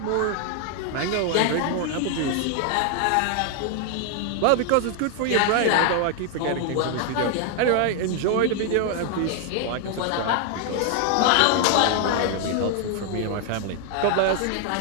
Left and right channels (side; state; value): both; different; correlation 0.00